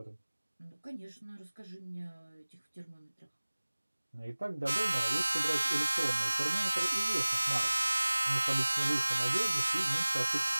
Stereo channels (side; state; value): both; inverted; correlation -1.00